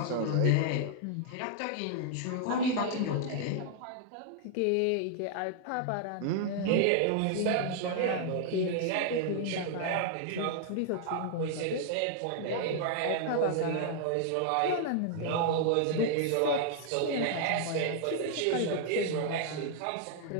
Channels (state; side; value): different; both; correlation 0.00